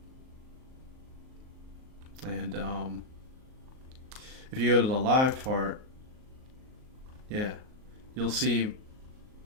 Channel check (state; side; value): late; left; 38 ms